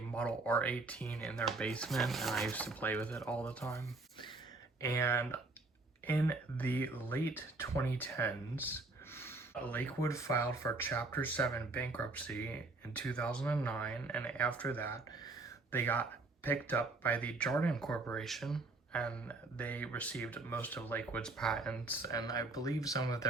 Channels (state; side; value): quieter; left; 3.4 dB